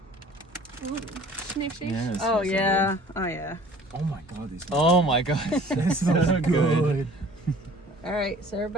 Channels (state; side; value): normal; both; correlation 0.50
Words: Ooh, sniff, sniff. Yes, Oh yeah. Oh yeah. Oh my god, these. Oh my god, This is so good. All right, so